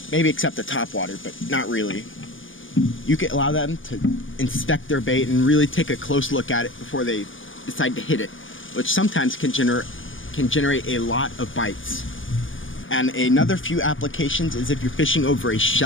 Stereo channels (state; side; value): late; right; 0.57 ms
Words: maybe except the topwater, but not really. You can allow them to inspect their bait and really take a close look at it before they decide to hit it, which sometimes can generate a lot of bites. And another few applications is if you're fishing over a